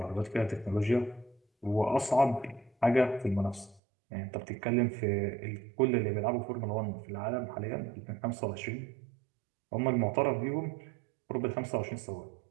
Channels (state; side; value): drops out; left; at 3.8 s